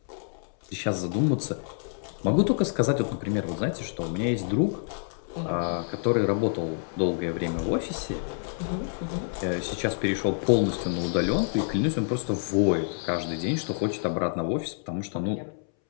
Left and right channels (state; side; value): silent; right; 60 dB below the other